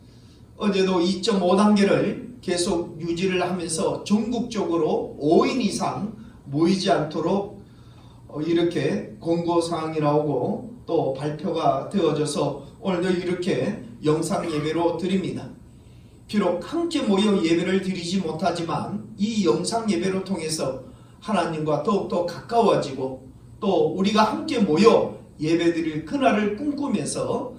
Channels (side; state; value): both; identical; correlation 1.00